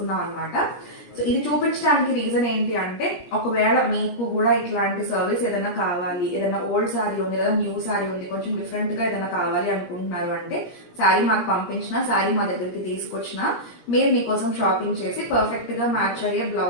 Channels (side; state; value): right; late; 17 ms